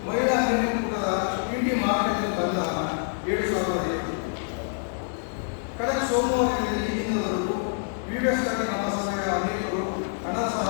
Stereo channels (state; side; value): silent; right; digital silence